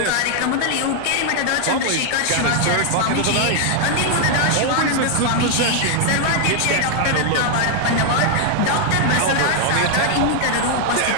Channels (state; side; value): different; both; correlation 0.00